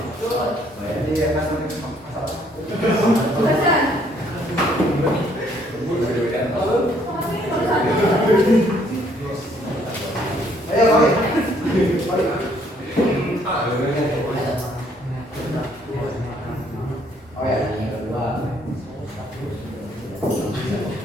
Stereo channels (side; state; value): both; normal; correlation 0.65